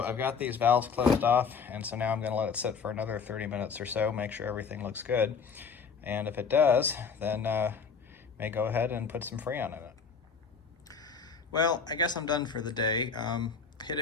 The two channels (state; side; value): quieter; right; 5.7 dB